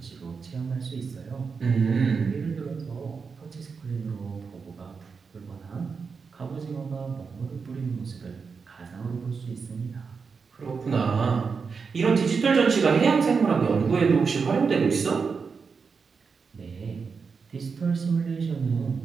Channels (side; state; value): left; quieter; 5.3 dB